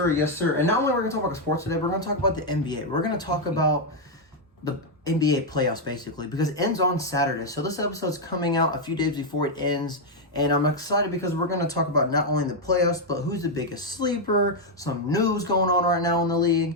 Yes, sir. And not only we're going to talk about sports today, we're going to talk about the NBA. We're going to talk about the NBA playoffs, basically, because it ends on Saturday. So this episode's coming out a few days before it ends. And I'm excited because we're going to talk about not only the playoffs, but who's the biggest sleeper, some news going on right now in the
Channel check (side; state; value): both; normal; correlation 0.01